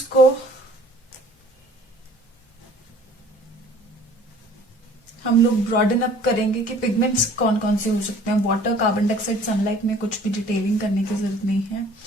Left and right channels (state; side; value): normal; both; correlation 0.52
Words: को हम लोग ब्रॉडन अप करेंगे कि पिगमेंट्स कौन कौन से हो सकते हैं। वाटर, कार्बन डाइऑक्साइड, सनलाइट में कुछ भी डिटेलिंग करने की जरूरत नहीं है।